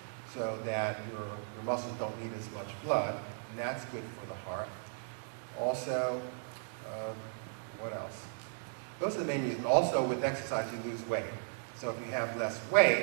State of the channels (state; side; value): silent; left; digital silence